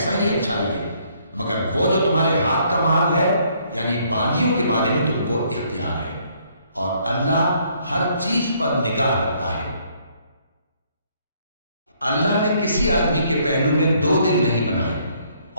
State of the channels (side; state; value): both; inverted; correlation -0.66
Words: ہی اچھا لگے، مگر وہ جو تمہارے ہاتھ کا مال ہے یعنی باندیوں کے بارے میں تم کو اختیار ہے، اور اللہ ہر چیز پر نگاہ رکھتا ہے۔ اللہ نے کسی آدمی کے پہلو میں 2 دل نہیں بنائے،